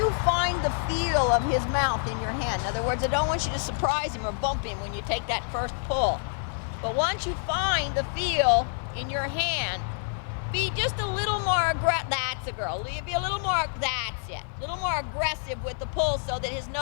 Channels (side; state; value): right; silent; 60 dB below the other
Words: find the feel of his mouth in your hand, in other words, I don't want you to surprise him or bump him when you take that first pull. But once you find the feel in your hand, be just a little more aggressive. That's a girl. Be a little more, that's it. A little more aggressive with the pull so that his